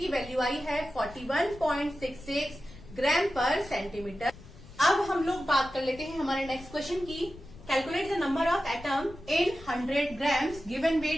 वैल्यू आई है 41.66 ग्राम पर सेंटीमीटर। अब हम लोग बात कर लेते हैं हमारे नेक्स्ट क्वेश्चन की। Calculate the number of atom in 100 grams, given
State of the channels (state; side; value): noise; left; rumble, 18 dB below the sound